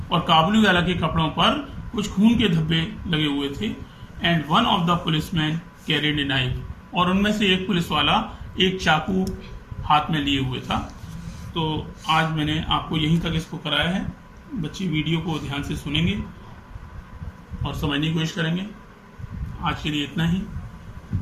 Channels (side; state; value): both; identical; correlation 1.00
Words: और काबुली वाला के कपड़ों पर कुछ खून के धब्बे लगे हुए थे। And one of the policeman carried a knife, और उनमें से एक पुलिस वाला एक चाकू हाथ में लिए हुए था। तो आज मैंने आपको यहीं तक इसको कराया है। बच्चे वीडियो को ध्यान से सुनेंगे और समझने की कोशिश करेंगे। आज के लिए इतना ही।